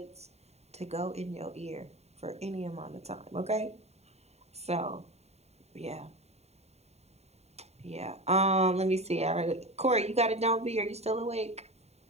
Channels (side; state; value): left; late; 0.31 ms